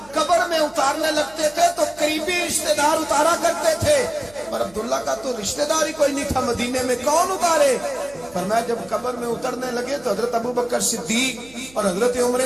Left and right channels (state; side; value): noise; right; hum, 25 dB below the sound